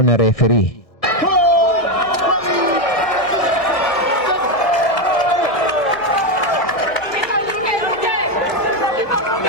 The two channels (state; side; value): late; right; 1.6 ms